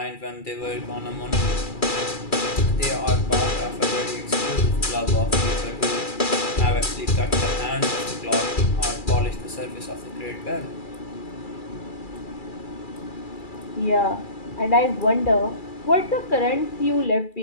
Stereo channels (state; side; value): late; right; 2.3 ms